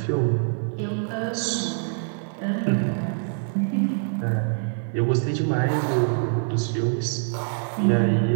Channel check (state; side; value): silent; left; digital silence